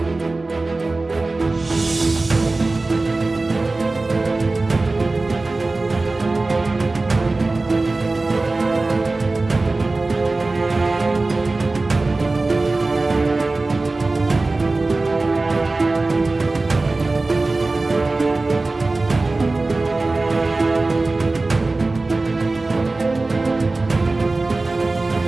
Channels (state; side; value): quieter; left; 3.3 dB